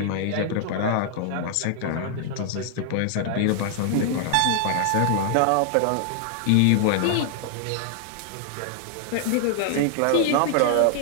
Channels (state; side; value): different; both; correlation 0.00